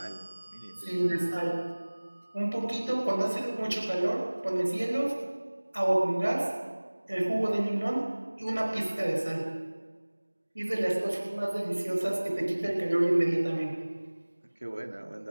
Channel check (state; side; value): inverted; both; correlation -1.00